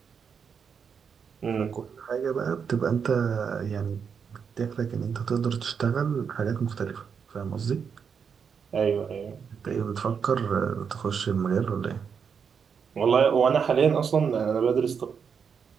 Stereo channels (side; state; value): left; quieter; 6.6 dB